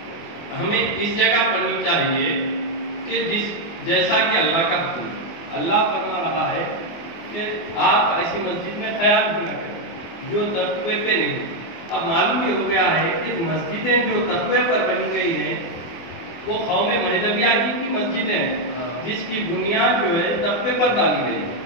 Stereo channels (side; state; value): right; late; 24 ms